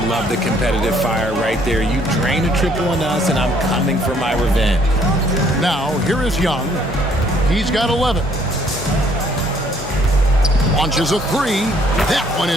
love the competitive fire right there. You drain a triple on us, and I'm coming for my revenge. Now, here is Young. He's got 11. Launches a 3. That one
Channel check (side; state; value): both; normal; correlation 0.63